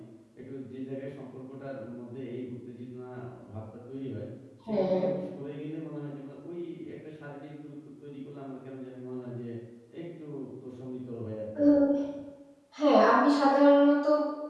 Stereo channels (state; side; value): identical; both; correlation 1.00